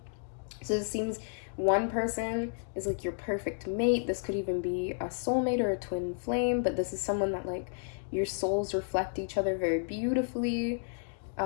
So it seems one person is like your perfect mate. This could even be a soulmate or a twin flame, but this is someone that like your souls reflect each other very beautifully.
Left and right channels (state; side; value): silent; right; 57 dB below the other